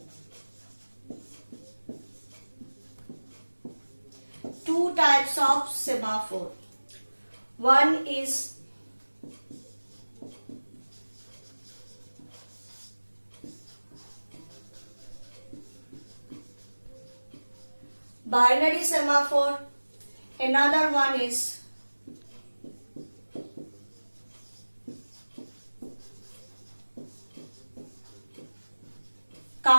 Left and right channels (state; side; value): inverted; both; correlation -1.00